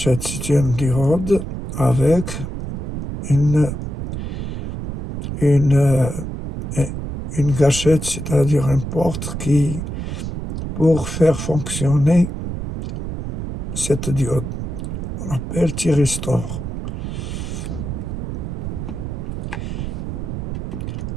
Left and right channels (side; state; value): right; noise; rumble, 5 dB below the sound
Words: système diode avec une gâchette, c'est-à-dire une porte qui, pour faire fonctionner cette diode, on appelle thyristor.